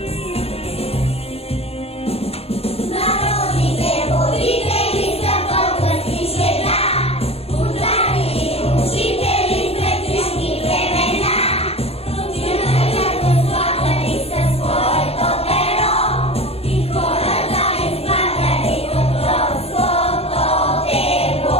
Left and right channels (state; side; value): late; right; 0.29 ms